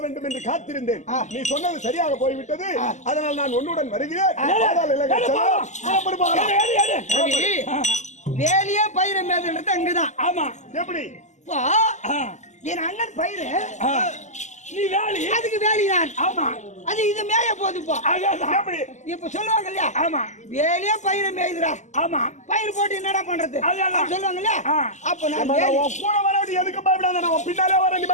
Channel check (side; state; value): right; late; 0.34 ms